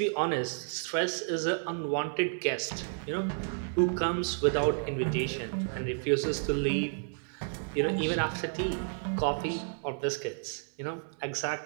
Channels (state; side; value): silent; left; 57 dB below the other